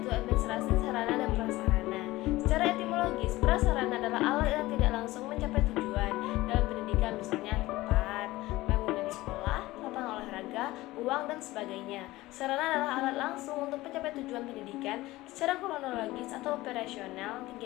administrasi sarana dan prasarana. Secara etimologis, prasarana adalah alat yang tidak langsung mencapai tujuan dalam pendidikan, misalnya tempat, bangunan sekolah, lapangan olahraga, uang, dan sebagainya. Sarana adalah alat langsung untuk mencapai tujuan pendidikan. Secara kronologis atau operasional,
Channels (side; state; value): right; quieter; 18.3 dB